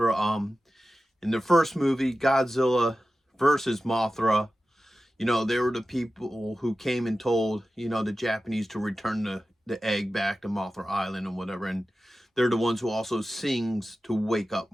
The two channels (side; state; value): both; normal; correlation 0.94